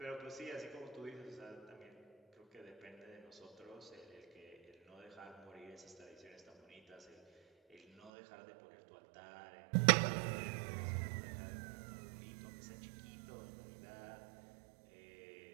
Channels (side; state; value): left; drops out; at 8.1 s